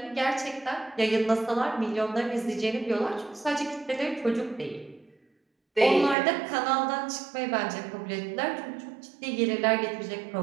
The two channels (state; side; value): drops out; left; at 6.2 s